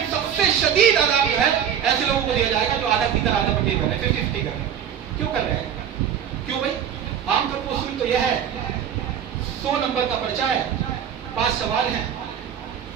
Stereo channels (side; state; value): left; quieter; 8.8 dB